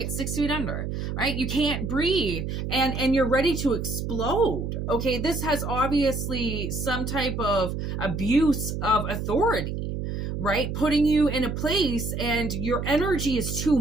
at 6 feet under, right? You can't breathe and you're ready to explode. Okay. This has obviously some type of abuse of authority, right? Putting you in a place and your energy is too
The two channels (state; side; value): noise; right; hum, 4 dB below the sound